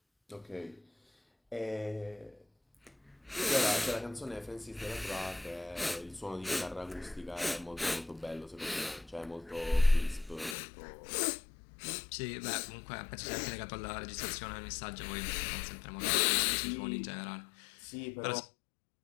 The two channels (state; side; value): drops out; right; at 10.6 s